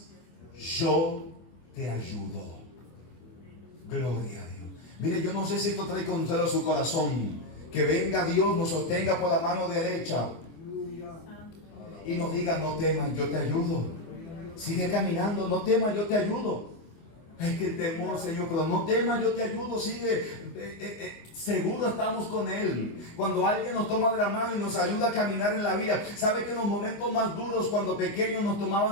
yo te ayudo. Gloria a Dios. Mire, yo no sé si esto trae consuelo a su corazón. Que venga Dios, nos sostenga por la mano derecha y nos diga: no temas, yo te ayudo. Sigue caminando, no temas, yo te ayudo. Es que el temor, Señor, pero no temas, yo te ayudo, sigue. Seguro estamos con Él. Cuando alguien nos toma de la mano y nos ayuda a caminar en la vida, sabe que en los momentos más duros, cuando pequeños nos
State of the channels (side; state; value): right; late; 25 ms